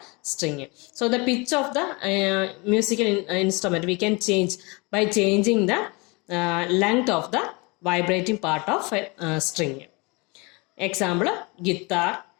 string. So the pitch of the musical instrument we can change by changing the length of the vibrating part of a string. Example, guitar,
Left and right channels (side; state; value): right; quieter; 27.8 dB